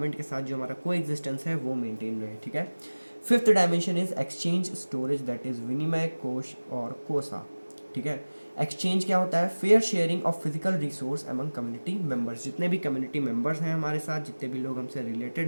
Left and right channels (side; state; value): both; inverted; correlation -1.00